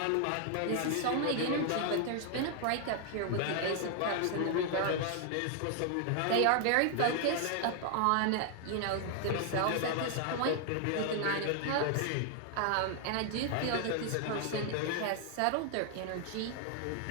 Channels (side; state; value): both; different; correlation 0.00